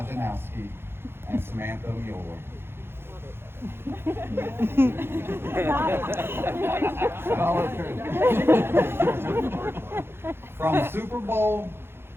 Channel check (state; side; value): late; left; 0.11 ms